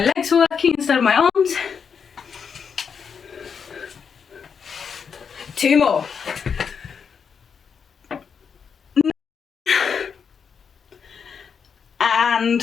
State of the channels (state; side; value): quieter; right; 6.5 dB